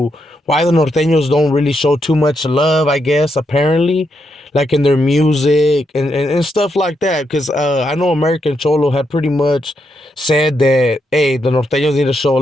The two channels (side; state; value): both; normal; correlation 0.81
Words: why the norteños don't really show too much love, I guess, apparently, like in their music and stuff like that. Because I know American Cholo had pretty much said that, hey, the norteños need to show a